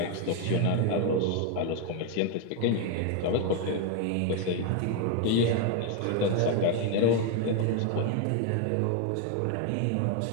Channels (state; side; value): different; both; correlation 0.01